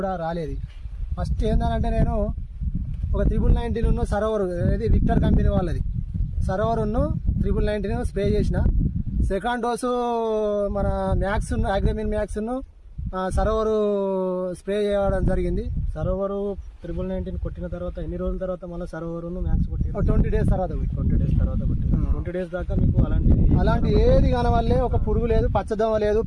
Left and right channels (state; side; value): identical; both; correlation 1.00